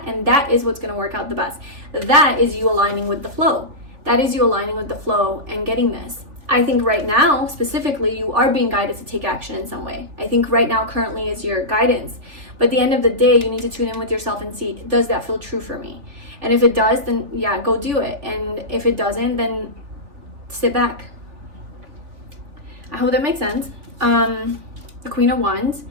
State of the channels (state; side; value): late; left; 3.4 ms